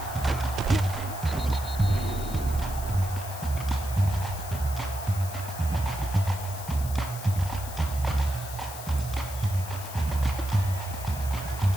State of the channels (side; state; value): left; noise; hiss, 12 dB below the sound